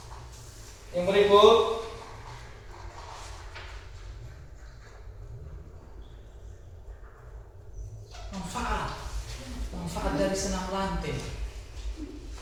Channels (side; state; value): both; identical; correlation 1.00